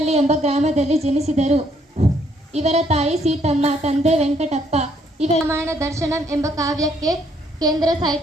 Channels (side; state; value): both; normal; correlation 0.69